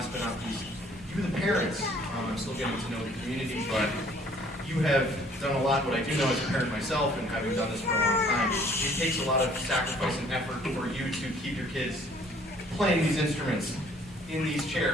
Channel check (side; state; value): both; normal; correlation 0.58